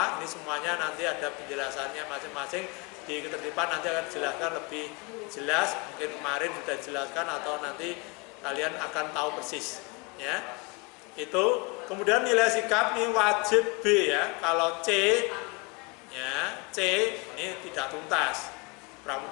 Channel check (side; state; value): right; quieter; 29.4 dB